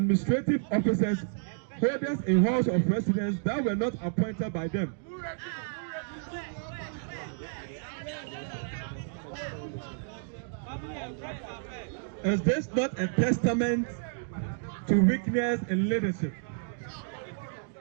officers, holders in halls of residence that were not appointed by them? Is this not a testament to weakness in leadership?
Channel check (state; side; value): silent; left; digital silence